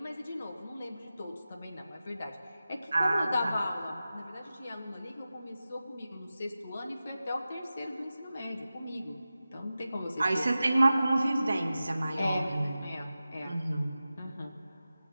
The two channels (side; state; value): both; inverted; correlation -0.94